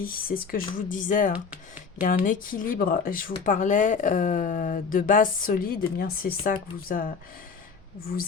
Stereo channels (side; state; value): right; quieter; 5.5 dB